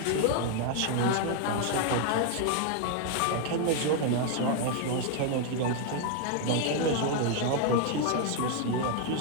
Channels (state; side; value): different; both; correlation 0.01